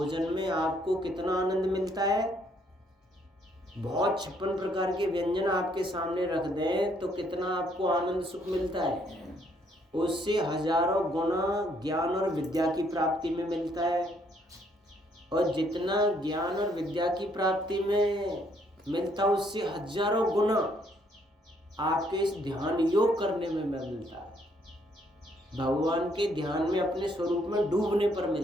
में आपको कितना आनंद मिलता है, बहुत 56 प्रकार के व्यंजन आपके सामने रख दें तो कितना आपको आनंद सुख मिलता है, उससे हजारों गुना ज्ञान और विद्या की प्राप्ति में मिलता है। और जितना ज्ञान और विद्या की प्राप्ति में मिलता है उससे हजारों गुना आपके इस ध्यान योग करने में मिलता है, भगवान के ध्यान में अपने स्वरूप में डूबने पर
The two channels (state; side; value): normal; both; correlation 0.68